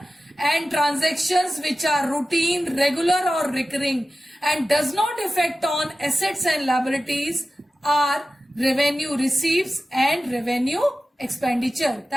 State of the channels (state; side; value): normal; both; correlation 0.94